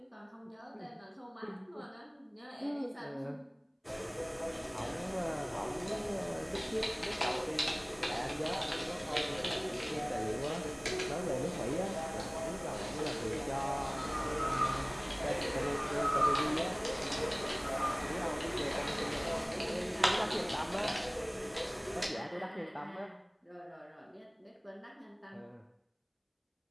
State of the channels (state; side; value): identical; both; correlation 1.00